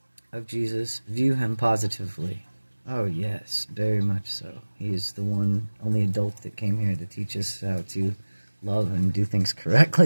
of Jesus, view him positively. Oh yes, very much so. He is the only adult that came here to teach us how to love and do things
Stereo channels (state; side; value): inverted; both; correlation -1.00